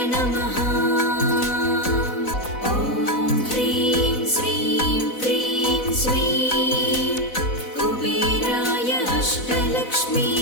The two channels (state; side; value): late; right; 4.0 ms